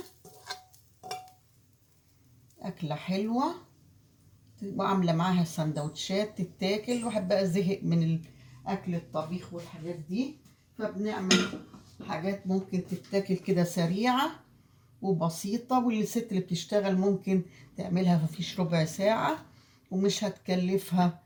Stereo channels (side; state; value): both; identical; correlation 1.00